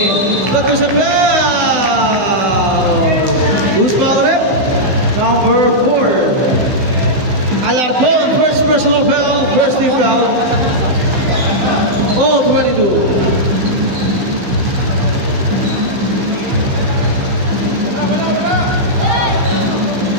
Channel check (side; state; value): left; late; 15 ms